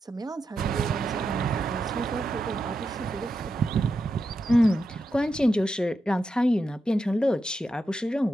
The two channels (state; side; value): normal; both; correlation 0.87